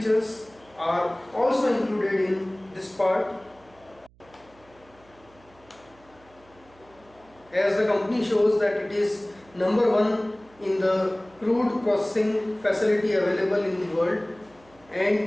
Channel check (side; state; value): right; noise; hum, 28 dB below the sound